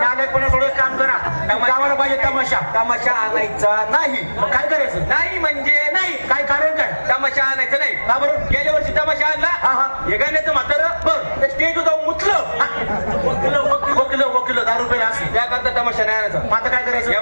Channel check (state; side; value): inverted; both; correlation -1.00